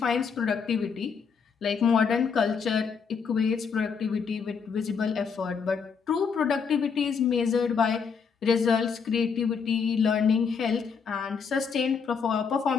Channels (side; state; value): right; quieter; 6.0 dB